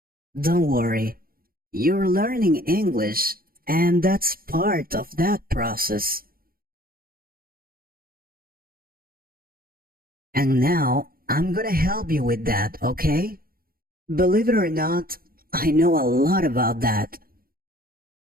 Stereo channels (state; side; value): late; left; 0.42 ms